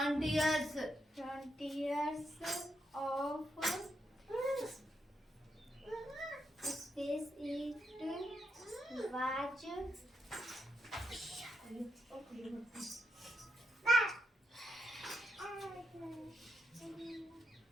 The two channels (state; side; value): normal; both; correlation 0.82